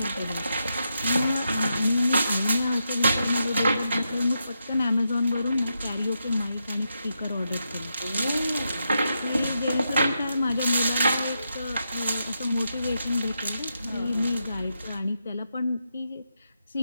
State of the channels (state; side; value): inverted; both; correlation -0.84